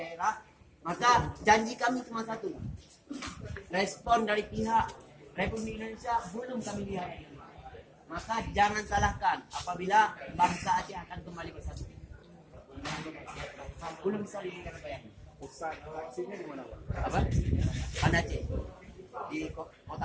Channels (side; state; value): both; identical; correlation 1.00